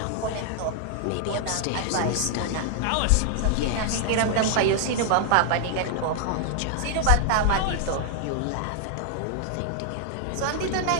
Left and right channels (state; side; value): different; both; correlation 0.00